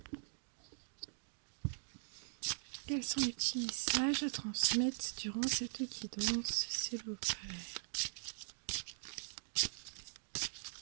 Quels sont les petits messages à transmettre durant cette guidance, s'il vous plaît?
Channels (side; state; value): left; silent; digital silence